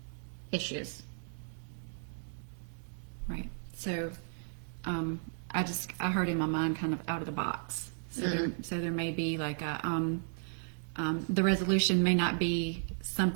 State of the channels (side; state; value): left; silent; 55 dB below the other